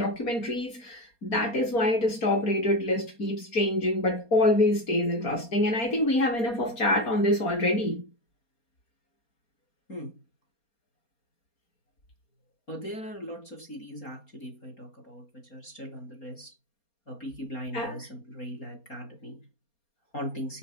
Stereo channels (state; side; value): late; right; 4.3 ms